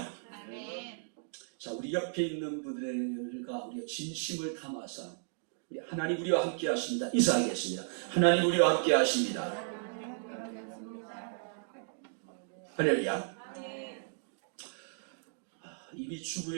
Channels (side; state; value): left; silent; digital silence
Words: 아멘. 자, 우리 옆에 있는 분들과 우리가 진심을 담아서 하나님 우리와 함께 하십니다. 인사하겠습니다. 하나님 우리와 함께 하십니다. 할렐루야. 이미